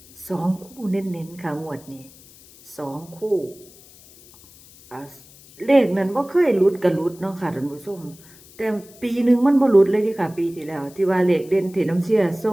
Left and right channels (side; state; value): left; noise; hiss, 23 dB below the sound